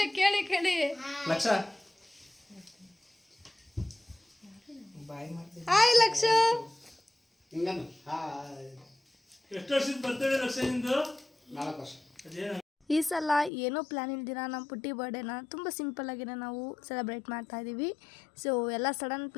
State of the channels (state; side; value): drops out; right; at 13.5 s